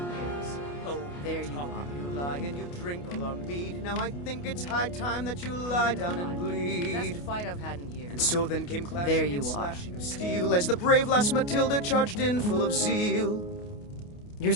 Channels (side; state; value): right; late; 28 ms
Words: years. "Oh, There you talk are. and you lie lie and you drink all our mead. Now I think it's high time that you lie down and bleed. Best fight I've had in years. And so then came clashing There you and are. slashing of steel as the brave lass Matilda charged in full of zeal. You're